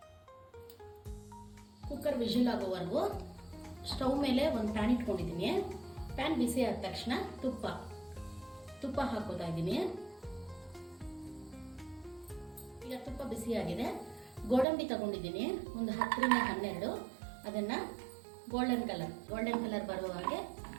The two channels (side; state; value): left; drops out; at 14.7 s